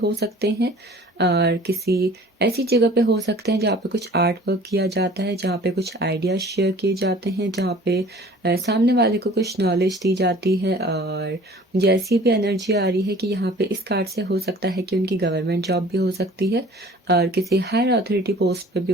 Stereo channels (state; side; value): normal; both; correlation 0.48